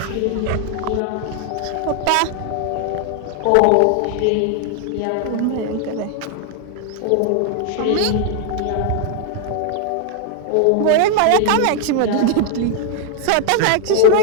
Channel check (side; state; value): both; different; correlation 0.00